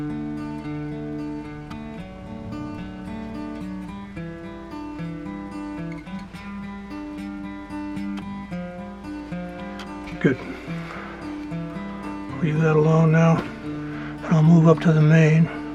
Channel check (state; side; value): identical; both; correlation 1.00